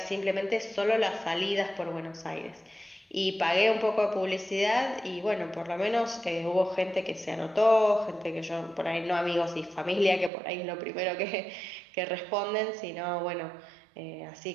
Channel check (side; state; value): left; drops out; at 10.3 s